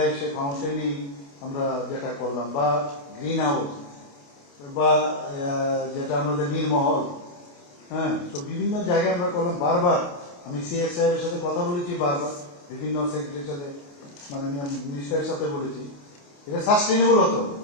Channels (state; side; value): late; right; 28 ms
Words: সে ফাউন্টেনই আমরা যেটা করলাম, বা গ্রিন হাউস, বা যেটা আমাদের নীলমহল, হ্যাঁ, তো বিভিন্ন জায়গায় আমরা করলাম। বারবার আমি সিএস সাহেবের সাথে কথা বলেছি, বারবার বিভিন্ন সেক্রেটারির সাথে, মাননীয় মিনিস্টারের সাথে বলেছি, এটা সাস্টেনেবল হতে হবে।